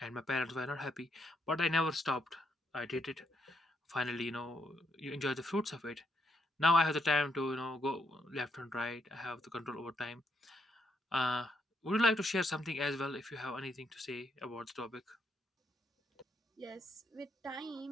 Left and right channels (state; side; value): normal; both; correlation 0.77